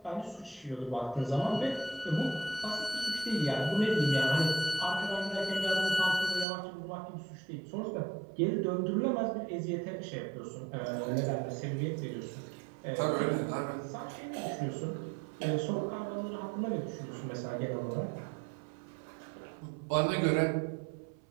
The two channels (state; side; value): drops out; left; at 6.5 s